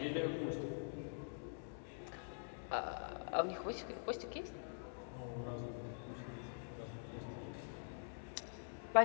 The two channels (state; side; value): silent; right; digital silence